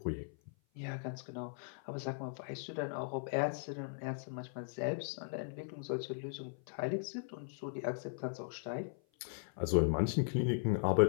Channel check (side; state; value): right; silent; 52 dB below the other